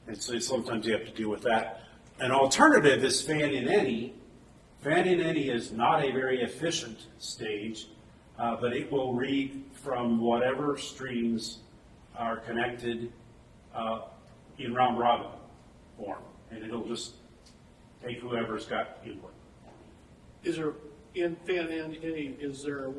And so sometimes you have to deal with that. An alternative is fan in any. Fan in any is not a very efficient stage, but it will read from whatever streams are connected in round robin form, and it'll just take whoever's got input. Is there, in fan in any, is there a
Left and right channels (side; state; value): both; identical; correlation 1.00